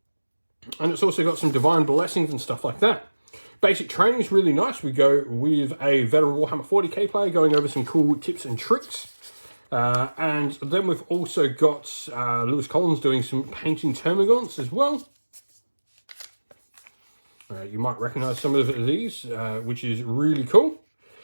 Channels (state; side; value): inverted; both; correlation -1.00